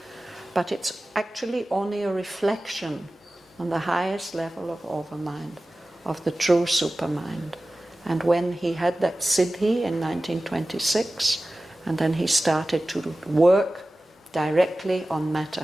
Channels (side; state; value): both; normal; correlation 0.96